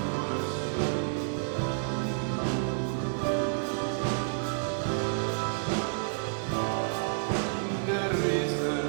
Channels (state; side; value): silent; left; digital silence